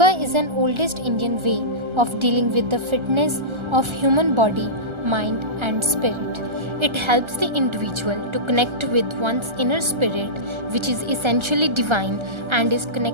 is an oldest Indian way of dealing with the fitness of human body, mind and spirit. It helps the individual to connect with one's inner spirit, which is essentially divine and is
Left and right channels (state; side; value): late; left; 1.3 ms